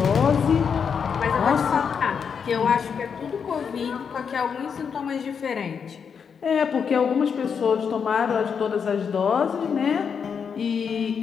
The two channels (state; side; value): quieter; right; 6.6 dB